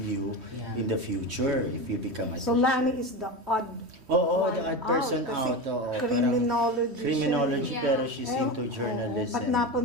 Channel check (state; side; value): late; left; 3.1 ms